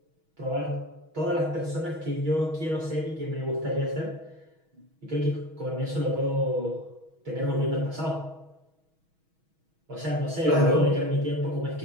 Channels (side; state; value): left; late; 6.3 ms